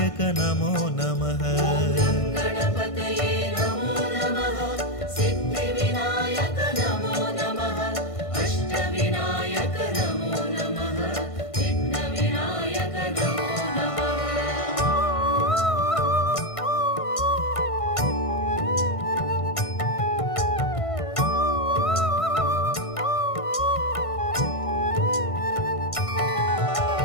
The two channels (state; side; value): late; right; 1.5 ms